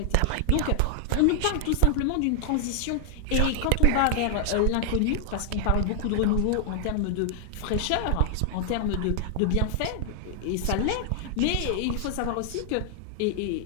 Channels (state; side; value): different; both; correlation 0.00